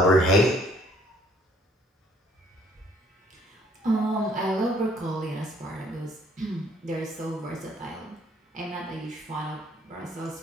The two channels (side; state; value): both; normal; correlation 0.62